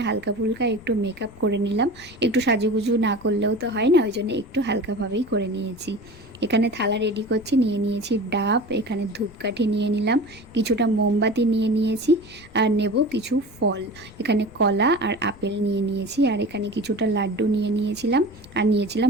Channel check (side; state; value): left; noise; rumble, 22 dB below the sound